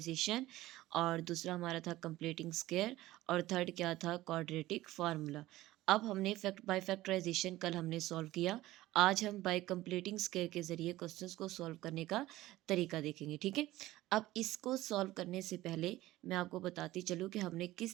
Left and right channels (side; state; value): left; quieter; 16.7 dB